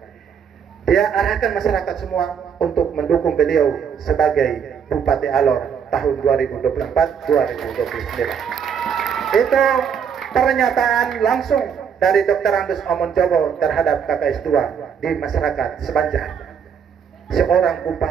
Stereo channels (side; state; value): left; quieter; 7.4 dB